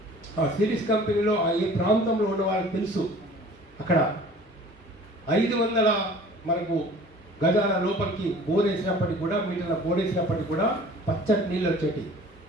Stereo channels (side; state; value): both; normal; correlation 0.47